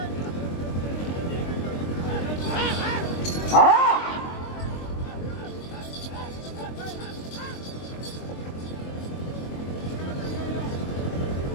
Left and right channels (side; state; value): right; late; 23 ms